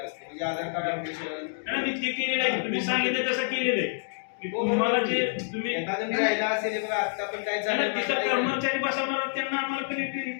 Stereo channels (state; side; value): silent; right; digital silence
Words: असतं म्हणजे आधार कार्ड अपडेशन मी ते केलेलं आहे. तुम्ही सांगितलं तसं केलेलं आहे. तुम्हाला जे तुम्ही एखादं राहिला असेल बघा आता पण काय झालं कर्मचारी बसवणार त्यांना आम्हाला